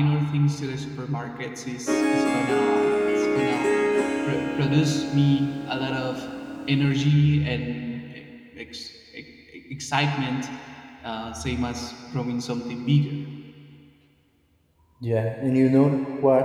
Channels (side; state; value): both; identical; correlation 1.00